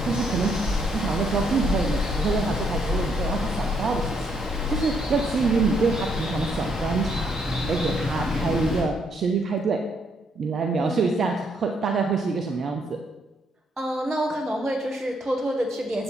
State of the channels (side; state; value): both; normal; correlation 0.72